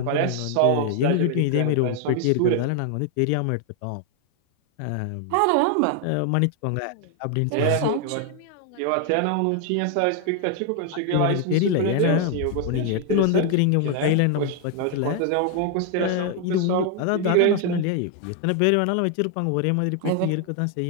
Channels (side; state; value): both; different; correlation 0.01